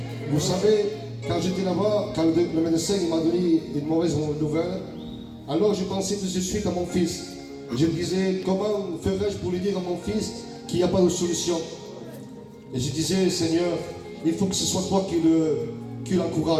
Vous savez, quand j'étais là-bas, quand le médecin m'a donné une mauvaise nouvelle, alors je pensais tout de suite à mon fils. Je me disais, comment ferais-je pour lui dire à mon fils qu'il n'y a pas de solution? Et je disais, Seigneur, il faut que ce soit toi qui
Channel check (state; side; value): identical; both; correlation 1.00